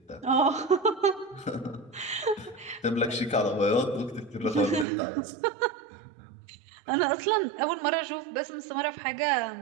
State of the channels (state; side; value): drops out; left; at 4.9 s